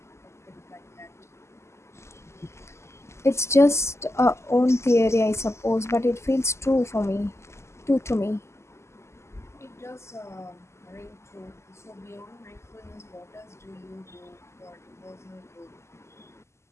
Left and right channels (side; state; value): right; late; 0.13 ms